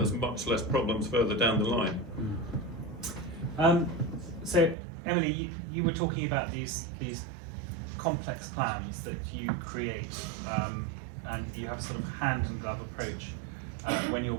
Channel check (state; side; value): drops out; left; at 4.8 s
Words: much less problems further down the line. So Emily, you were talking about these complex plans that you create, and you have a sort of hand and glove approach when you're